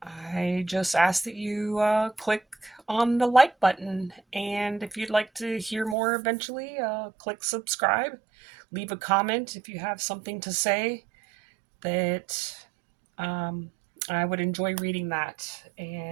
I just ask that you click on the like button. And if you'd like to hear more eventually, click subscribe. Leave a comment if you have something to say that um, I would enjoy reading that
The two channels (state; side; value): drops out; left; at 6.0 s